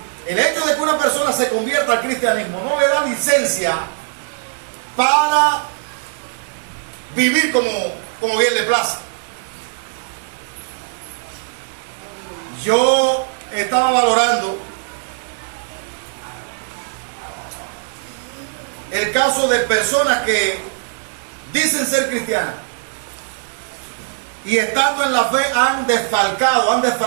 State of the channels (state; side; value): silent; left; digital silence